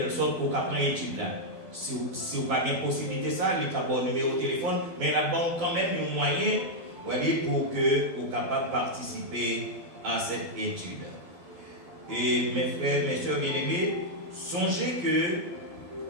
sorte pour capable prendre étude là. Si vous n'avez pas de possibilité ça, il y a un numéro de téléphone, mais là-bas quand même un moyen pour que vous capable de participer à cette étude. Et mes frères, mes soeurs bien-aimés, songez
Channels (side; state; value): left; late; 11 ms